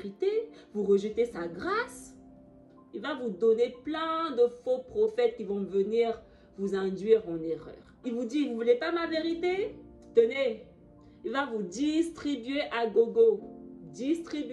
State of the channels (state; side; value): identical; both; correlation 1.00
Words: vous rejetez sa grâce. Il va vous donner plein de faux prophètes qui vont venir vous induire en erreur. Il vous dit, vous ne voulez pas ma vérité? Tenez, il va vous distribuer à gogo.